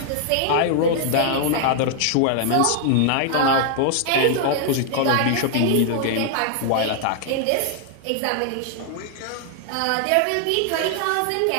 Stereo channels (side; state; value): both; different; correlation -0.01